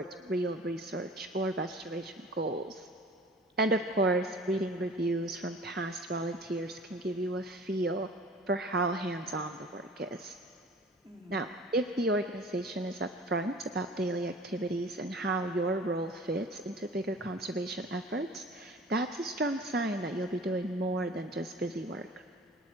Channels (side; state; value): both; normal; correlation 0.45